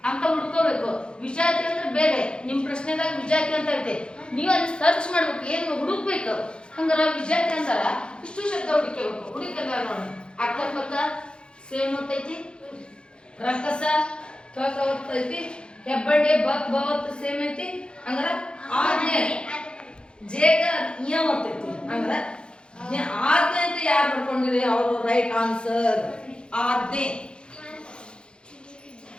ಅಂತ ಹುಡ್ಕೋಬೇಕು. ವಿಜಾತಿ ಅಂದ್ರೆ ಬೇರೆ. ನಿಮ್ ಪ್ರಶ್ನೆದಾಗ ವಿಜಾತಿ ಅಂತ ಐತೆ, ನೀವು ಅಲ್ಲಿ ಸರ್ಚ್ ಮಾಡ್ಬೇಕು, ಏನ್ ಹುಡುಕ್ಬೇಕು. ಹಂಗಾರ ವಿಜಾತಿ ಅಂತಾರ ಇಷ್ಟು ಶಬ್ದ ಹುಡುಕಬೇಕು. ಹುಡುಕಲ್ಲ ನೋಡಿ. ಅಕ್ಕಪಕ್ಕ ಸೇಮ್ ಒತ್ತೈತಿ, ರಕ್ಕಸ ಕ ಒತ್ತೈತಿ, ಹೆಬ್ಬಡ್ಡೆ ಬಕ್ ಬವತ್ತು ಸೇಮ್ ಐತಿ. ಹಂಗಾರ ಆಜ್ಞೆ ಜೇಗ ಇಯ ಒತ್ತೈತಿ. ಹಂಗಾರ ಆಜ್ಞೆ ಅಂತ ಯಾರು ಬರ್ಕೊಂಡಿರಿ ಅವರು ರೈಟ್ ಆನ್ಸರ್. ಆಜ್ಞೆ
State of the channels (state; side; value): late; right; 0.052 ms